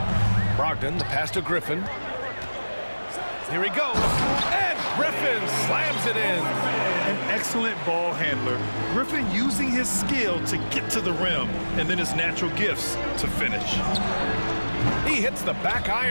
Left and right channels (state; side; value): inverted; both; correlation -1.00